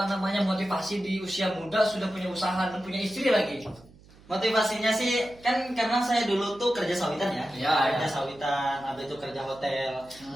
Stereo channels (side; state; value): right; noise; hum, 24 dB below the sound